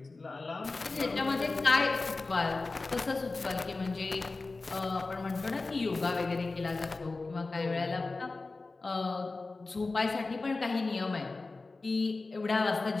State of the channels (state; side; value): quieter; right; 3.6 dB